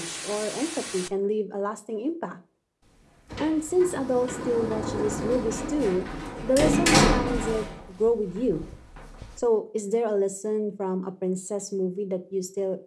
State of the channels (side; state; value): both; identical; correlation 1.00